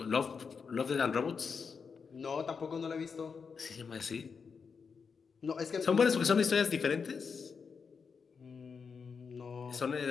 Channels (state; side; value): quieter; right; 5.7 dB